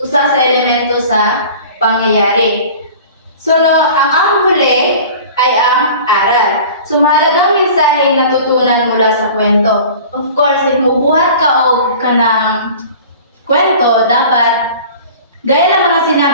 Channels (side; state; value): both; inverted; correlation -0.42